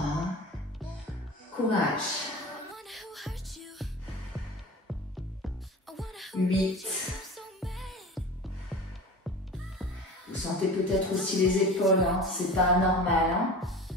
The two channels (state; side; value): normal; both; correlation 0.35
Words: Courage. 8. Vous sentez peut-être aussi les épaules, hein? C'est pas anormal. Hein?